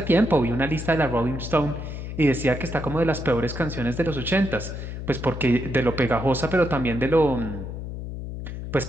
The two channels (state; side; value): noise; left; hum, 7 dB below the sound